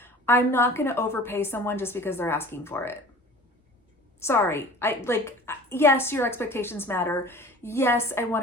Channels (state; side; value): normal; both; correlation 0.43